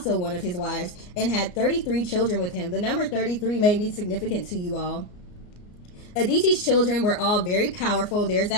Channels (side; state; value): right; late; 33 ms